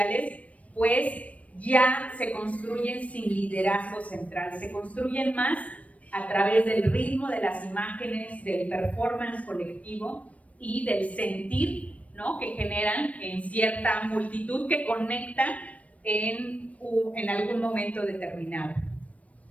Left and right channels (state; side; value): late; right; 0.066 ms